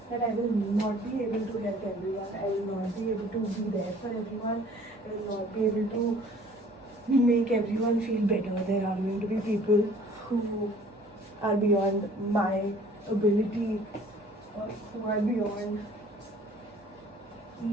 that I will not be able to help everyone, I will not be able to be there for everyone, I will not be able to make everyone feel better. There are going to be people who are beyond my ability, or who are beyond,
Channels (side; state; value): both; normal; correlation 0.53